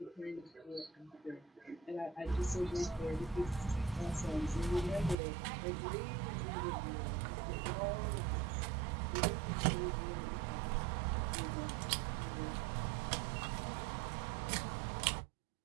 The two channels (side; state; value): left; drops out; at 5.2 s